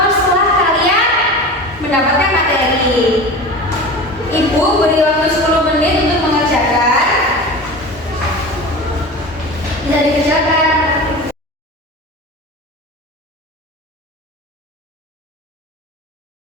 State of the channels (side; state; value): both; normal; correlation 0.32